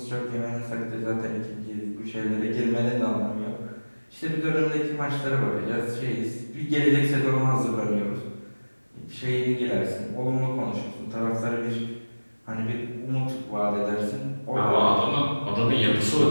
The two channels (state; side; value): inverted; both; correlation -1.00